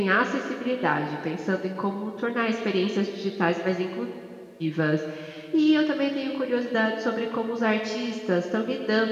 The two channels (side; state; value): both; identical; correlation 1.00